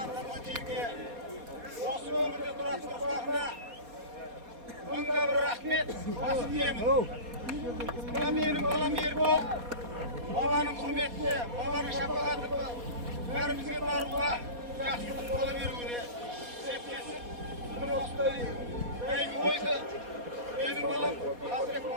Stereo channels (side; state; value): left; late; 4.2 ms